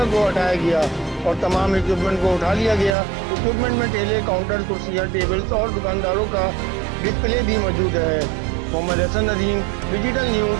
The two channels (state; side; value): drops out; left; at 3.0 s